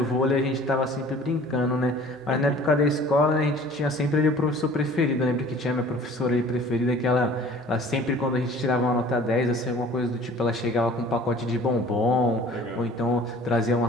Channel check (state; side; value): normal; both; correlation 0.49